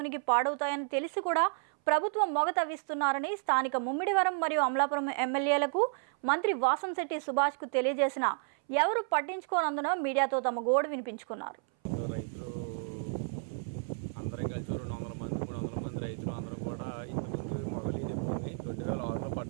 పాడవుతాయని తెలిసి కూడా ప్రభుత్వం మొగ తవ్విస్తున్నారని స్థానిక ముమ్మిడివరం మరియు అమలాపురం ఎమ్మెల్యేలకు మంత్రి వాసంశెట్టి సుభాష్కు తెలియజేసిన ఎవరు పట్టించుకోనందున మీడియాతో తమ గోడు వినిపించుకున్నారు. రైతులు అందరం కలిసి 200 మంది 300 మంది రైతులు అందరూ కూడా ఇంతకుముందు మొగలి చెప్పుకుంది 2006లో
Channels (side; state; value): left; silent; 57 dB below the other